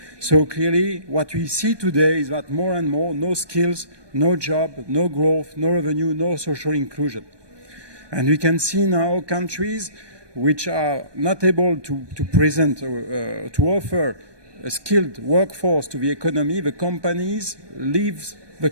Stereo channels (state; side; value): late; left; 1.2 ms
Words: So clearly, what we see today is that more and more, no skills, no job, no growth, no revenue, no social inclusion. And we can see now countries which are not able to present or to offer a skilled workforce to the economy. The companies leave the